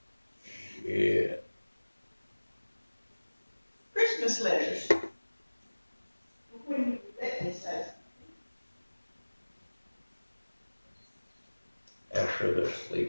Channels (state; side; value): inverted; both; correlation -1.00